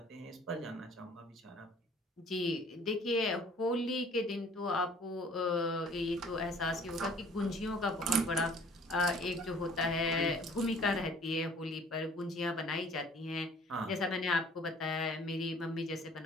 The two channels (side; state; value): both; normal; correlation 0.53